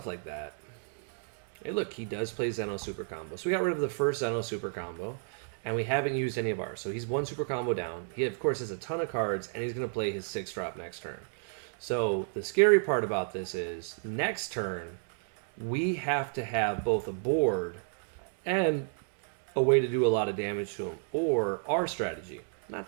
like that. Hey, look, he does play Zeno Super Combo. So we got rid of the first Zeno Super Combo, and we haven't used any of ours. So he's one Super Combo down. He, of course, has a ton of cards, and he's going to play his 6-drop next turn. So the scary part about this is next turn, we have to have both a board and a way to do a lot of damage to him, or our strategy, not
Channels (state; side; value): silent; left; digital silence